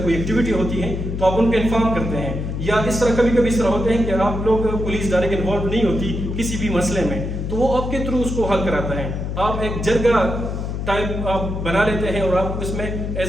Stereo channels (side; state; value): left; noise; hum, 4 dB below the sound